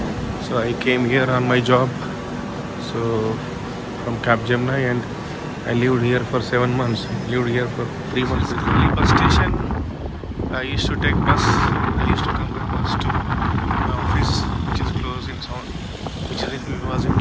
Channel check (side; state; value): both; identical; correlation 1.00